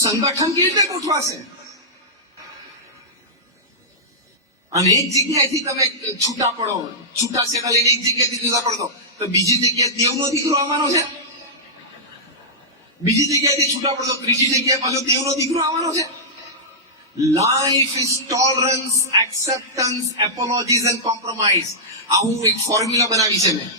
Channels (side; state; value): both; normal; correlation -0.13